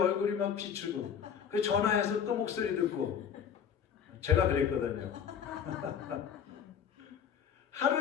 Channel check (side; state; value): right; quieter; 8.0 dB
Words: 막 비추고 그 전화해서 또 목소리 듣고 제가 그랬거든요.